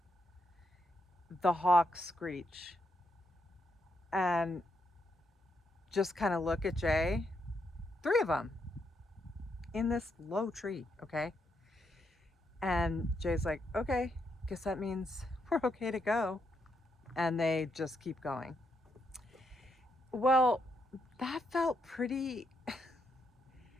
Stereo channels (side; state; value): both; normal; correlation 0.79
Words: The hawks screech and just kind of look at Jay. 3 of them in this low tree, okay? And Jay's like, okay, guess that means we're okay to go. And they just keep going. Well, that felt pretty